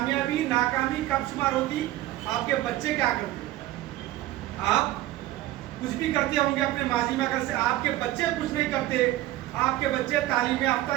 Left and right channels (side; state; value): left; quieter; 15.6 dB